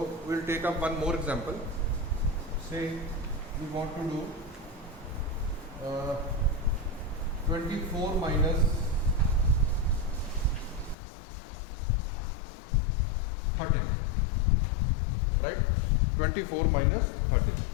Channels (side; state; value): right; drops out; at 11.0 s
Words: we'll take up one more example. Say we want to do 24 minus 13, right? 24 minus 13.